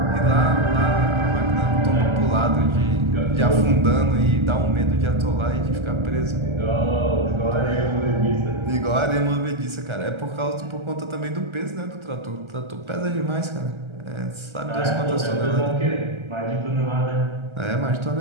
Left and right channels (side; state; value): left; late; 1.3 ms